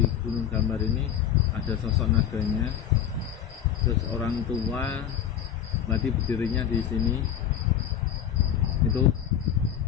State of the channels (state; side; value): quieter; right; 9.6 dB